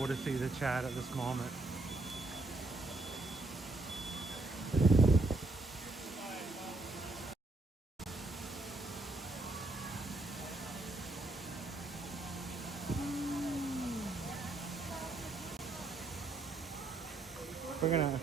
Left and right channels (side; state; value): left; quieter; 3.1 dB